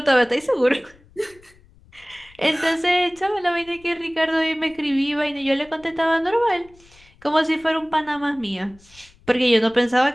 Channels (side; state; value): left; noise; rumble, 27 dB below the sound